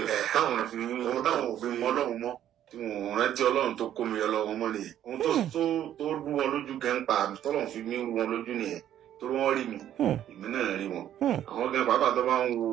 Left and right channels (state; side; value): quieter; left; 11.2 dB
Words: táwọn òfin Ọlọ́run mọ́ tí wọn rántí Ọlọ́run tó kó mi Ọlọ́run mọ́ nìyẹn ohun tó rú wọn lójú gẹ́ńpà tọ́lọ́run fi mí rú wọn lójú nìyẹn tó wọ́n rí mi èmi náà rí wọn àwọn gan pàápàá tó bá ń wo